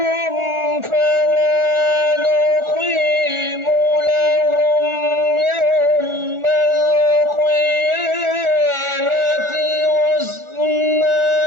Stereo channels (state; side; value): late; left; 1.4 ms